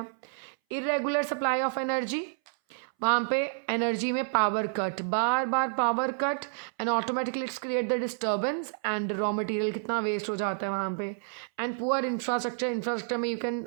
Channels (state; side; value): silent; left; 58 dB below the other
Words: इरेगुलर सप्लाई ऑफ एनर्जी, वहाँ पे एनर्जी में power cut, bar bar power cut and automatically it's create the disturbance and raw material कितना वेस्ट हो जाता है वहाँ पे। एंड पुअर इंफ्रास्ट्रक्चर में you can